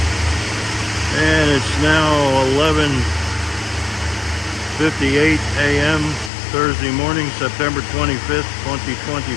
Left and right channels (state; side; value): drops out; right; at 6.3 s